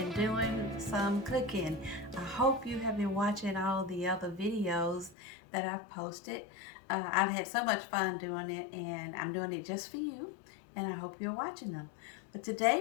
doing some cooking. I hope you have been watching all the other videos that I've posted. I've had so much fun doing it, and I'm doing it just for you, and I hope you're watching them. But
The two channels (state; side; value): drops out; right; at 5.2 s